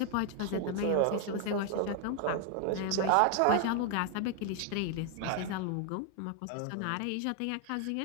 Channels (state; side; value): different; both; correlation 0.00